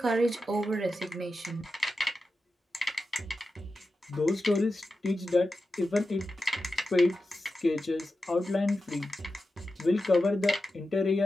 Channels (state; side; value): normal; both; correlation 0.91